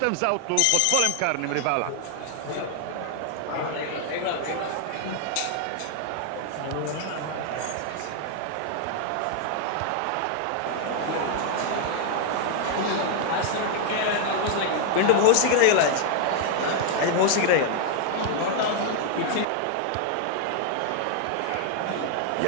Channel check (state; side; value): different; both; correlation 0.00